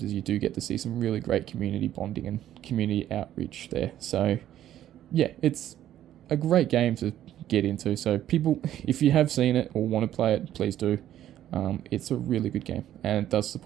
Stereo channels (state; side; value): quieter; left; 12.0 dB